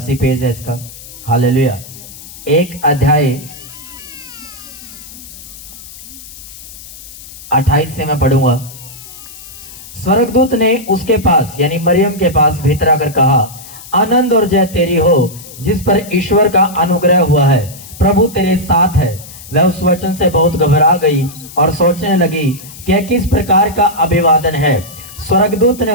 पेज है इसका। हालेलुया। एक अध्याय 28 से मैं पढ़ूंगा। स्वर्गदूत ने उसके पास यानी मरियम के पास भीतर आकर कहा, आनंद और जय तेरी हो जिस पर ईश्वर का अनुग्रह हुआ है, प्रभु तेरे साथ है। वह उस वचन से बहुत घबरा गई और सोचने लगी कि यह किस प्रकार का अभिवादन है। स्वर्गदूत ने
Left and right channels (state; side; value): noise; left; hiss, 16 dB below the sound